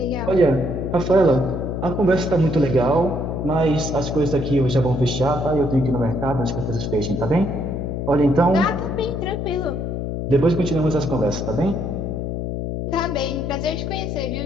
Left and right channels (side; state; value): left; noise; hum, 3 dB below the sound